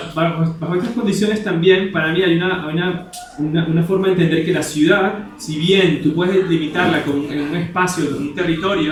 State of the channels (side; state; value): both; identical; correlation 1.00